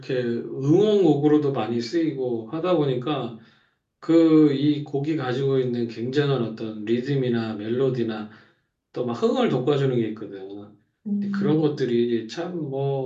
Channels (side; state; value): both; identical; correlation 1.00